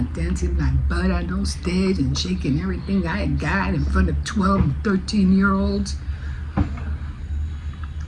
dancing my butt on no stage and shaking everything I got in front of 12 and 13-year-olds.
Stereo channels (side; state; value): both; identical; correlation 1.00